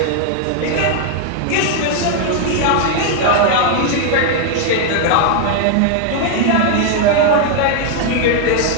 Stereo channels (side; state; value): both; different; correlation 0.00